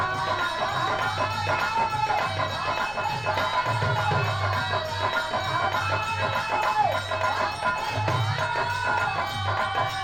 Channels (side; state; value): left; noise; rumble, 19 dB below the sound